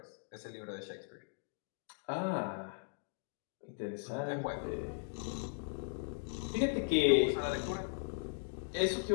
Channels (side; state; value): right; silent; digital silence